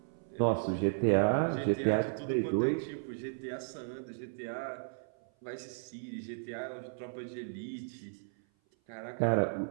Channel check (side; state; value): left; silent; 55 dB below the other